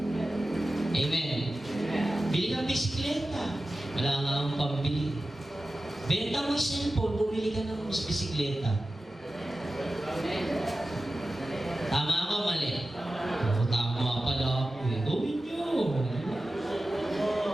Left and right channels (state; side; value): normal; both; correlation 0.94